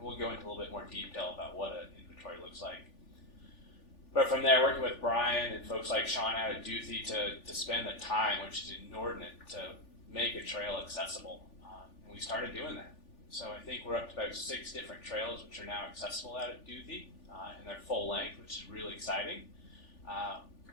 we'll go into a little bit more detail about what an inventory looks like. But from there, working with Brian and folks like Sean out at Duthie to spend the time, which is inordinate, to make a trail accessible. And we started doing that. So I think we're up to about 6 different trails which are now accessible out at Duthie in their full length, which is really exciting.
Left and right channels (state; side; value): late; right; 3.4 ms